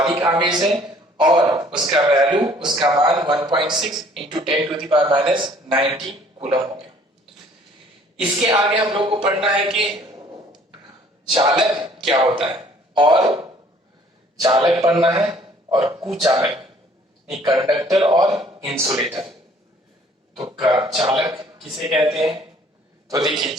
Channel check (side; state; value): both; normal; correlation 0.57